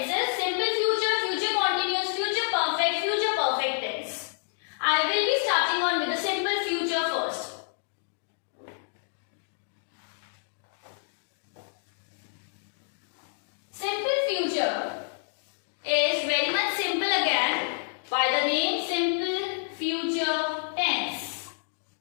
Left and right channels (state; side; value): silent; right; digital silence